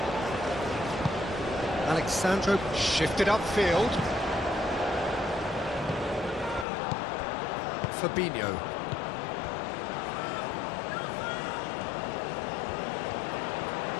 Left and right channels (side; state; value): right; drops out; at 6.7 s